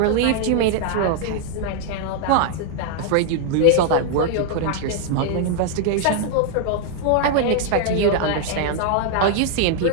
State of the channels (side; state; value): both; different; correlation 0.00